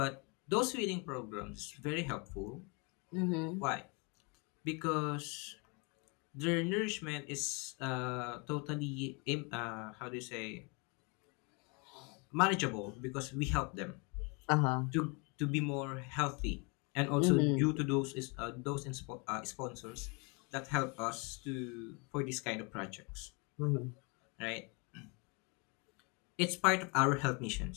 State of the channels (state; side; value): quieter; right; 31.7 dB